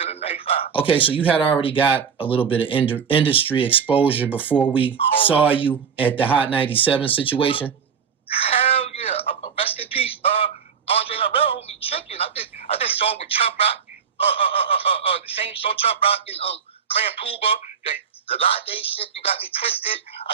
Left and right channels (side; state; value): left; quieter; 6.8 dB